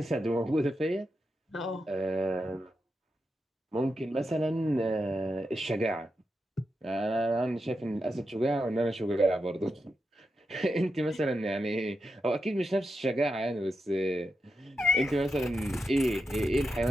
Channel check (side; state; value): both; normal; correlation 0.87